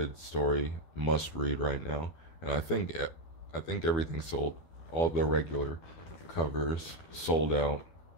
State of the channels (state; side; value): late; right; 12 ms